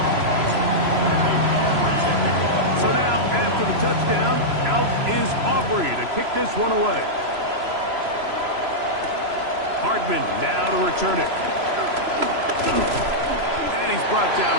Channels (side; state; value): left; late; 3.0 ms